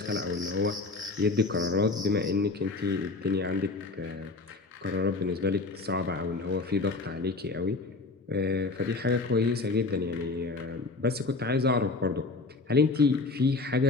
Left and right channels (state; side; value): quieter; right; 3.6 dB